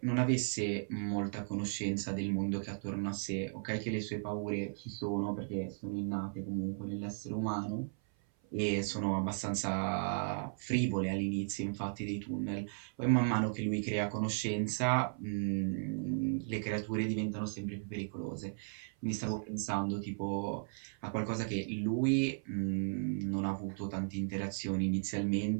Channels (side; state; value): left; silent; 54 dB below the other